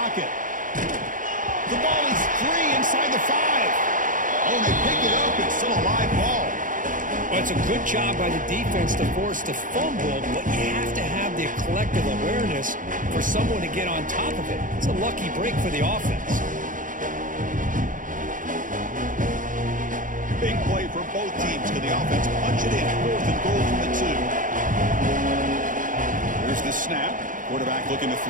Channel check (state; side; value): late; left; 0.38 ms